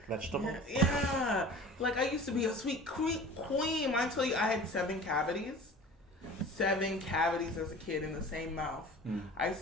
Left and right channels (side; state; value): both; normal; correlation 0.42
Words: vegetables. Yeah. Like I used to be a sweet queen. I tell you, I had 7 cavities. 7 cavities as a kid in the same mouth. I used